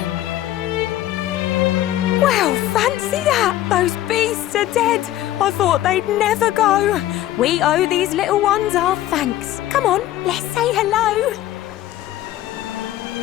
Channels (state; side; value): quieter; right; 13.9 dB